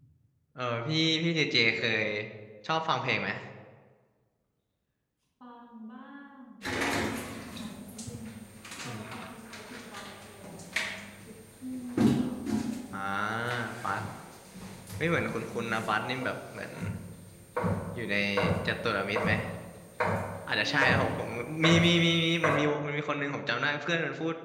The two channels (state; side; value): identical; both; correlation 1.00